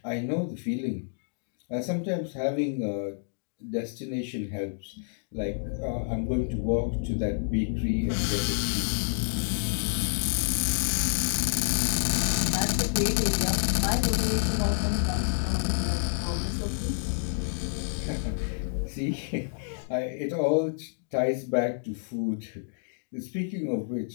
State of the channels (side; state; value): right; silent; digital silence